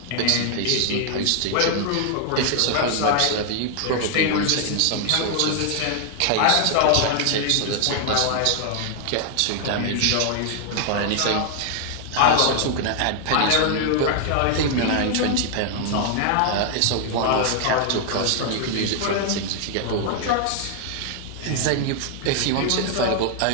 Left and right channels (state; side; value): different; both; correlation 0.00